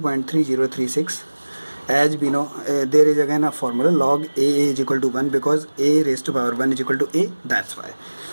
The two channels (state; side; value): inverted; both; correlation -1.00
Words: As we know, there is again a formula, log a is equal to 1, because a raised to power 1 is equal to a, that's why.